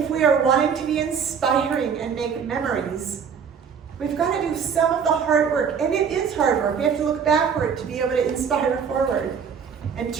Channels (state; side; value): quieter; left; 6.8 dB